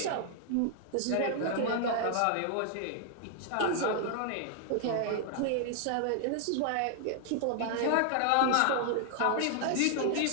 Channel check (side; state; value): both; different; correlation 0.00